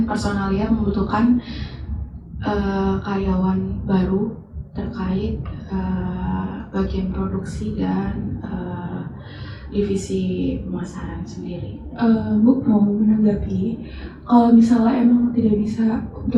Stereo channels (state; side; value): identical; both; correlation 1.00